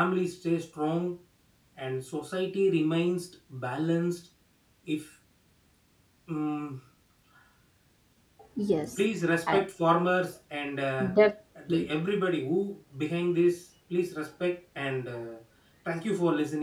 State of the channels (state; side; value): identical; both; correlation 1.00